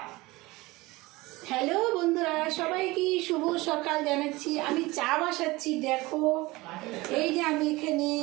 হ্যালো বন্ধুরা, সবাইকে শুভ সকাল জানাচ্ছি। আমি চা বসাচ্ছি, দেখো এই যে আমি এখানে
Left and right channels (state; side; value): quieter; left; 21.4 dB